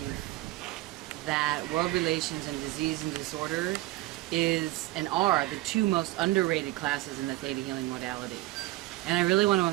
that World Relations and Disease and Disorder is and are the two most underrated classes in the Theta Healing modality. And I really want to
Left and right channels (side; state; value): left; quieter; 18.0 dB